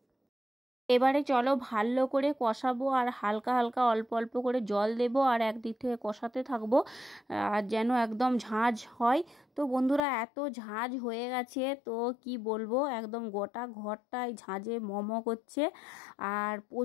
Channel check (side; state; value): right; drops out; at 10.0 s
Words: এবারে চলো ভালো করে কষাবো, আর হালকা হালকা অল্প অল্প করে জল দেব, আর একদিক থেকে কষাতে থাকবো আর যেন একদম ঝাঁঝ হয়। তো বন্ধুরা এত ঝাঁঝ হয়ে গেছে, তো কি বলবো, একদম গোটা ঘরটায় ঝাঁঝে মম করছে। আর